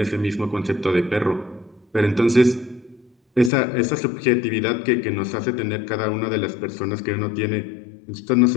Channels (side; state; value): right; drops out; at 3.5 s